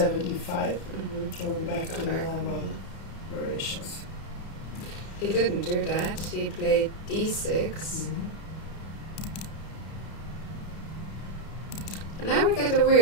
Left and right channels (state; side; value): late; right; 31 ms